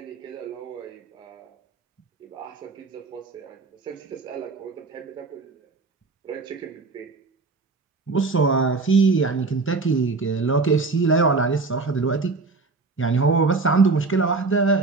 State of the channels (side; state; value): left; quieter; 4.0 dB